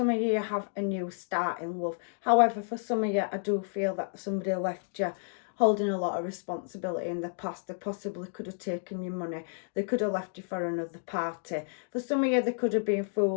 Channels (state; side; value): silent; right; digital silence